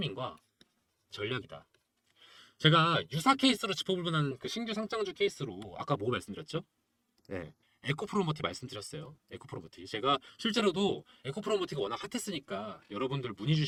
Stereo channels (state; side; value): identical; both; correlation 1.00